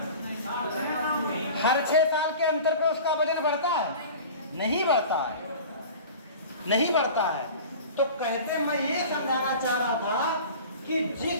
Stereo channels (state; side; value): inverted; both; correlation -0.38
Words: हर 6 साल के अंतर पे उसका वजन बढ़ता है? नहीं बढ़ता है, नहीं बढ़ता है। तो कहते मैं ये समझाना चाह रहा था कि